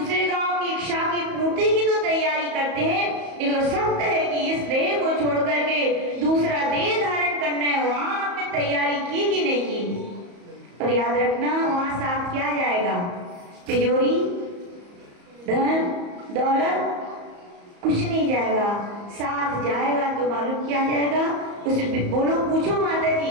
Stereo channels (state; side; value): late; left; 34 ms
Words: गांव की इच्छा की पूर्ति की तो तैयारी करते हैं, लेकिन सत्य है कि इस देह को छोड़ करके दूसरा देह धारण करना है, वहां आपने तैयारी की कि नहीं की? और याद रखना, वहां साथ क्या जाएगा? तिजोरी, धन दौलत कुछ नहीं जाएगा। साथ जाएगा तो मालूम क्या जाएगा? उस बोलो, पूछो माता